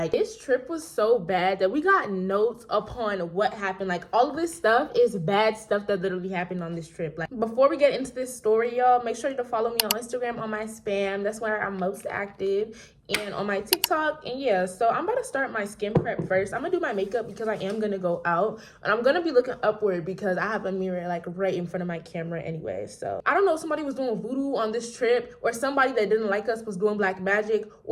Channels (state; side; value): identical; both; correlation 1.00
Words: this trip was so bad that we got notes upon what happened. Like, all of this stuff is bad stuff that literally happened on this trip. Like, before we get into this story, y'all, make sure to follow me on Instagram on my spam. That's where I'm most active. And on my TikTok. And yeah, so I'm about to start my skin prep first. I'm gonna do my makeup because I am gonna go out, and I'm gonna be looking upward because I have a mirror like right in front of my camera anyway. So I don't know if somebody was doing voodoo on this trip or somebody that didn't like us was doing black magic